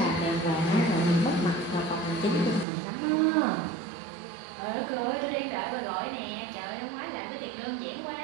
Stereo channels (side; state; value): left; drops out; at 2.7 s